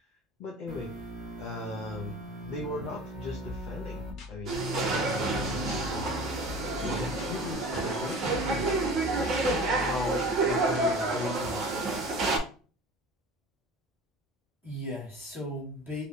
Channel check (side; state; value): both; normal; correlation 0.39